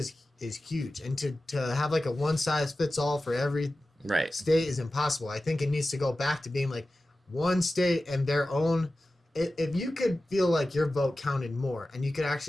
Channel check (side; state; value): both; normal; correlation 0.95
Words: huge, and to have like a one size fits all for every state is impossible. I think it needs to go back to being like one state and their own. If you could feel like your vote counted more and you could